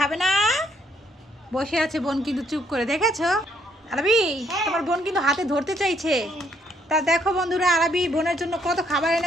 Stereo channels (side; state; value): both; normal; correlation 0.69